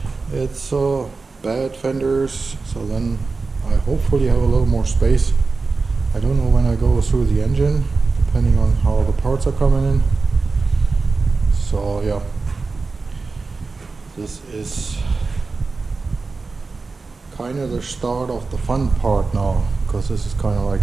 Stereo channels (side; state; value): left; quieter; 4.1 dB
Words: it's bad fenders, so then I hopefully have a little more space. I don't know when I go through the engine, depending on how the parts are coming in. So yeah, this is kind of the start of the fun part now, because this is kind of like